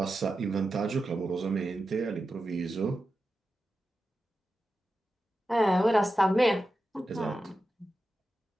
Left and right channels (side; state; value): both; normal; correlation 0.91